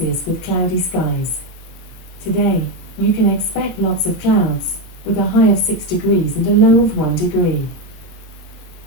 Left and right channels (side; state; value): right; late; 17 ms